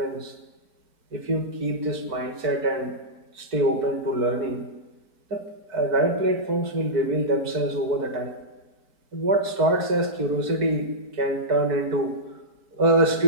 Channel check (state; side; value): late; left; 4.6 ms